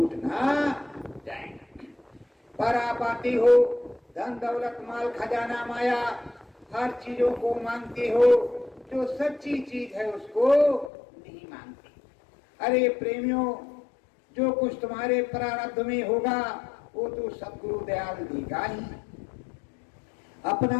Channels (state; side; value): drops out; right; at 10.9 s